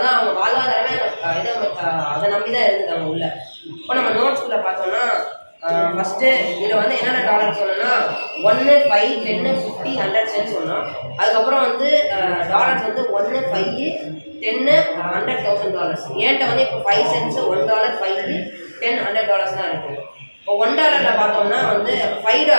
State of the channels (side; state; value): both; inverted; correlation -1.00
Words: அவங்க வாழ்வாதாரமே அதை நம்பி தான் இருந்துட்டாங்க உள்ள. இப்போ நம்ம நோட்ஸ்குள்ளே பார்த்தோம்னா ஃபஸ்ட்டு இதில் வந்து என்னென்ன டாலர் சொன்னோன்னா 1, 5, 10, 50, 100 சென்ட் சொன்னோம். அதுக்கப்புறம் வந்து டாலர்ஸ் வந்து 1, 5, 10, $100,000. ஏன்ட்ட வந்து இப்போ 5 சென்ட்ஸு, $1, 5, 10, $100 தான் இருக்குது. இப்போ $1 பார்த்தோம்னா வந்து